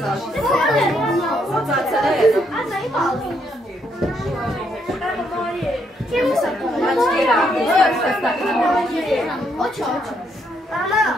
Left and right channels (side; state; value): both; normal; correlation 0.74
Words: Srca se redu. Hoću.